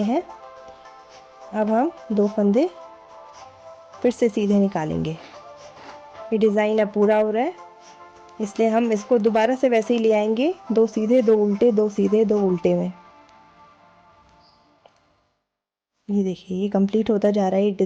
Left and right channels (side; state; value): both; identical; correlation 1.00